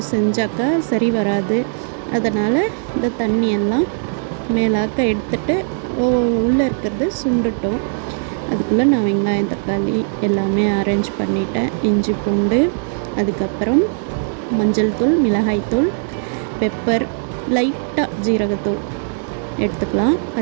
செஞ்சாக்கா சரி வராது. அதனால் இந்த தண்ணியெல்லாம் மேலாக்க எடுத்துட்டு உள்ளே இருக்கிறது சுண்டுட்டோம். அதுக்குள்ளே நான் வெங்காயம், தக்காளி எல்லாமே அரேஞ்ச் பண்ணிட்டேன். இஞ்சி பூண்டு, அதுக்கப்புறம் மஞ்சள் தூள், மிளகாய்த்தூள், பெப்பர், லைட்டாக ஜீரகத்தூள் எடுத்துக்கலாம்.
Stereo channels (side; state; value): left; silent; digital silence